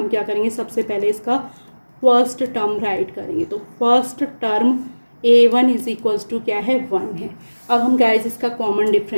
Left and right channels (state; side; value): inverted; both; correlation -1.00